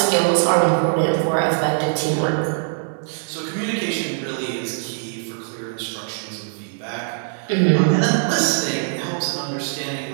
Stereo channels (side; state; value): left; silent; digital silence